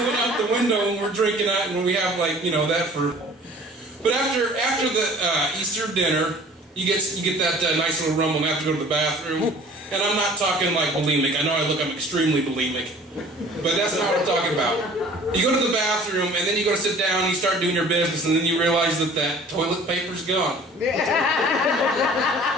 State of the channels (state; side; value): normal; both; correlation 0.48